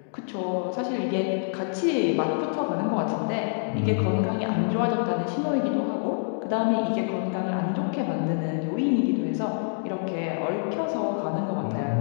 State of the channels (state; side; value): silent; right; digital silence